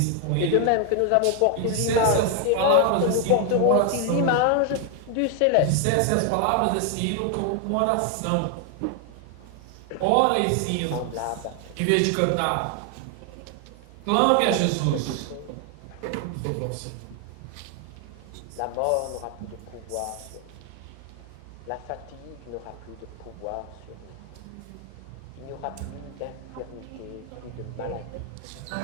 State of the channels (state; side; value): different; both; correlation 0.00